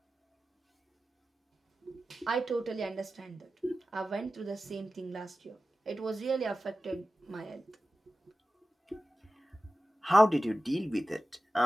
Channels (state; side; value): normal; both; correlation 0.94